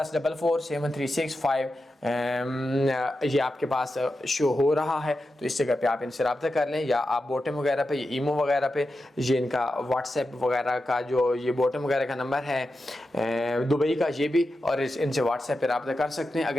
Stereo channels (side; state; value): both; normal; correlation 0.90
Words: ये आपके पास शो हो रहा है, तो इस जगह पे आप इनसे रब्ता कर लें, या आप बॉटम वगैरह पे, ये ईमो वगैरह पे, ये इनका व्हाट्सएप वगैरह का जो ये बॉटम वगैरह का नंबर है दुबई का, ये भी, और इनसे व्हाट्सएप पे रब्ता कर सकते हैं।